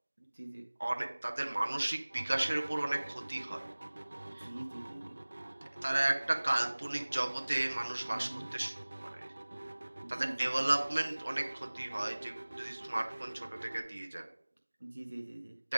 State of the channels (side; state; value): both; inverted; correlation -1.00